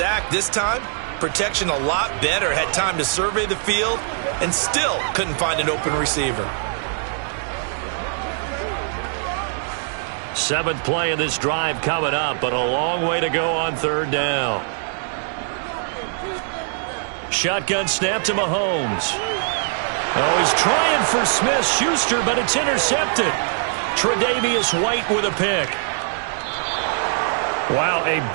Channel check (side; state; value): left; silent; 61 dB below the other